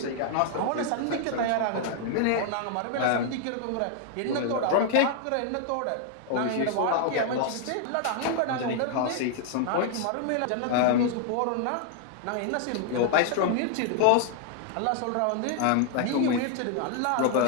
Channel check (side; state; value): both; different; correlation 0.00